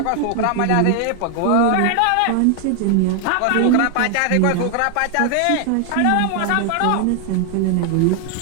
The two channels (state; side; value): different; both; correlation 0.00